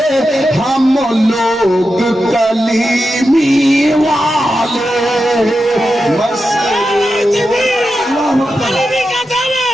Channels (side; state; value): both; normal; correlation 0.90